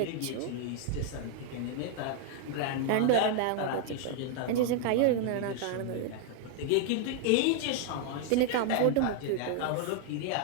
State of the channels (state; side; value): different; both; correlation 0.00